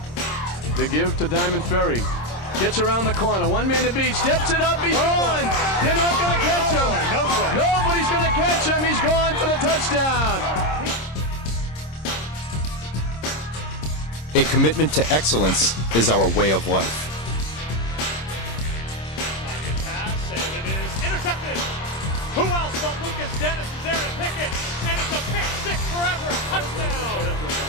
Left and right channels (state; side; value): late; right; 26 ms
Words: The give to Diamond Ferry. Gets around the corner. One man to beat. Steps it up. He's gone. They're not going to catch him. Nobody's going to catch him. He's gone for the touchdown. A commitment to excellence is our way of life. Pass, and it is intercepted. Who else but Lucas Dennis is there to pick it? And it's a pick six forever. Touchdown.